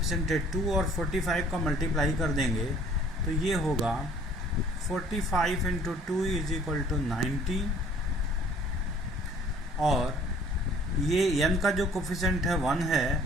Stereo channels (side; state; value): both; normal; correlation 0.55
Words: है 2 और 45 का मल्टीप्लाई कर देंगे तो ये होगा 45 × 2 = 90। और ये n का जो कोफिशिएंट है 1 है